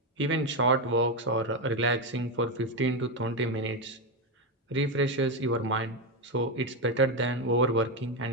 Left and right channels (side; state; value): both; normal; correlation 0.09